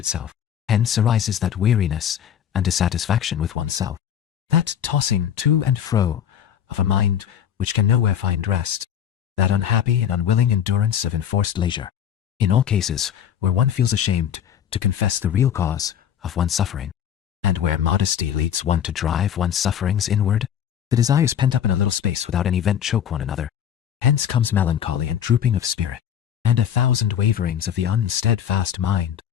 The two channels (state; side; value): quieter; right; 9.3 dB